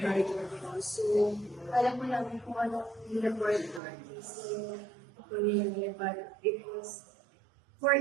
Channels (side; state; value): left; drops out; at 3.8 s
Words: manager ko. So, alam ko namin kung ano yung report artist yung kunin, but it was for